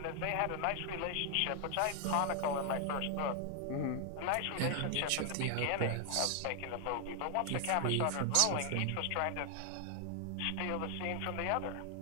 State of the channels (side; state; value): both; different; correlation 0.00